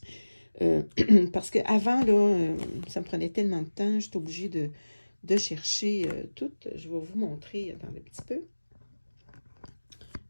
Parce qu'avant, là, ça me prenait tellement de temps, j'étais obligée de chercher toutes. Je vais vous montrer, attendez un petit peu.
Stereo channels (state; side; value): inverted; both; correlation -1.00